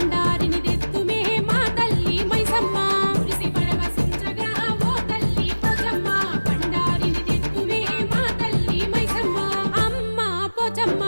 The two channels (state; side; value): inverted; both; correlation -1.00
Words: తెత్తుమే మా తల్లి మైసమ్మ మురిసి పరవశించగా ఓ తల్లి పోచమ్మ బండారిని తెత్తుమే మా తల్లి మైసమ్మ అమ్మ పోచమ్మ